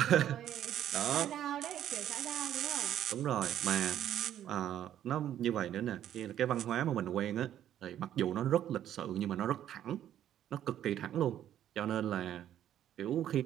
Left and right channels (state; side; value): quieter; left; 11.1 dB